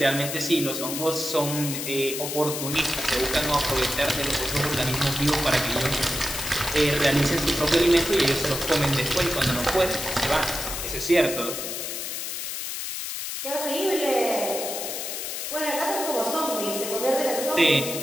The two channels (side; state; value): left; noise; hiss, 5 dB below the sound